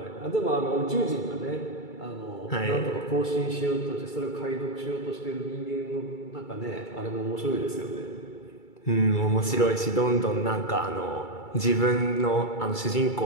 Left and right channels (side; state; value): right; late; 2.3 ms